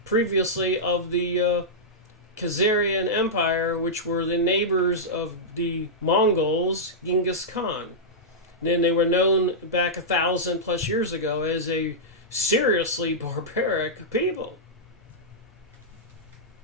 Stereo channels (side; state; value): both; normal; correlation -0.10